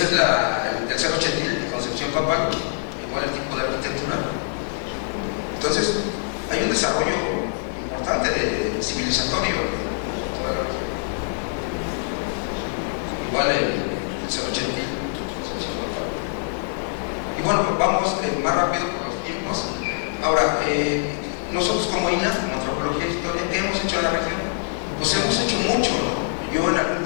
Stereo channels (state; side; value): silent; right; digital silence